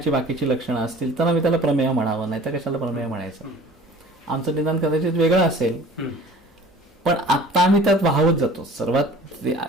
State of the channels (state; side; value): normal; both; correlation 0.46